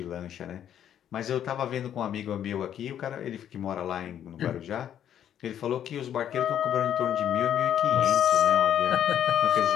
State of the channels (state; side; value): quieter; right; 10.1 dB